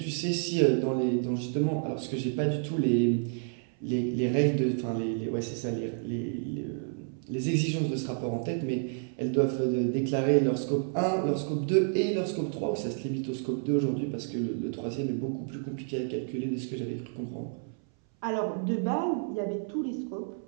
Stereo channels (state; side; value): silent; left; 58 dB below the other